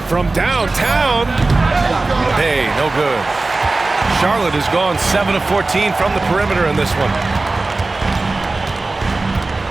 From downtown. Bey, no good. Charlotte has gone 7 of 14 from the perimeter in this one.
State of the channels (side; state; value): left; quieter; 3.3 dB